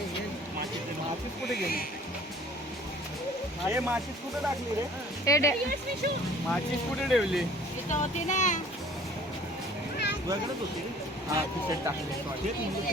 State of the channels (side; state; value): both; normal; correlation 0.51